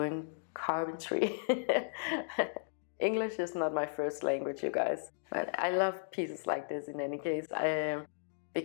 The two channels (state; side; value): silent; right; digital silence